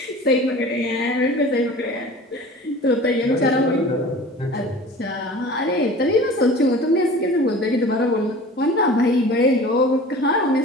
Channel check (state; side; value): normal; both; correlation 0.41